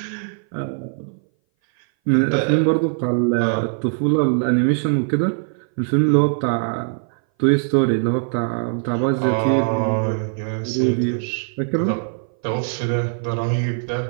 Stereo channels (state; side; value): silent; left; 59 dB below the other